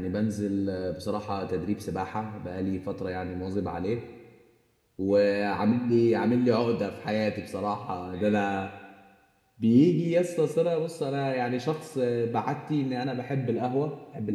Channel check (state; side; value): identical; both; correlation 1.00